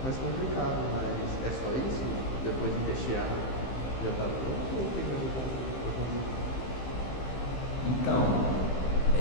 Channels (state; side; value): late; right; 15 ms